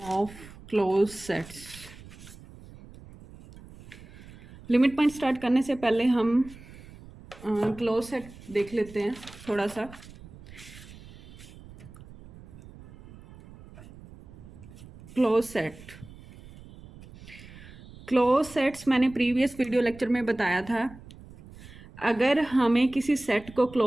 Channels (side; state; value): right; noise; rumble, 19 dB below the sound